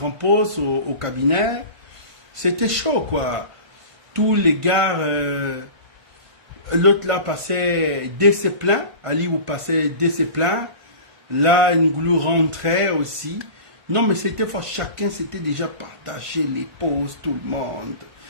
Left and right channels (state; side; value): late; left; 1.5 ms